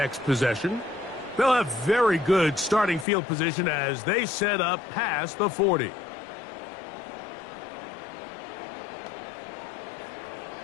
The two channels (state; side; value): drops out; right; at 3.1 s